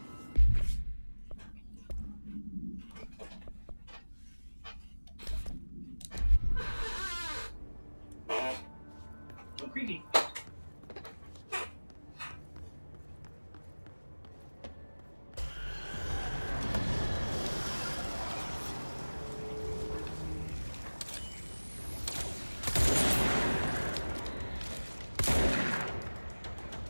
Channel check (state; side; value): inverted; both; correlation -1.00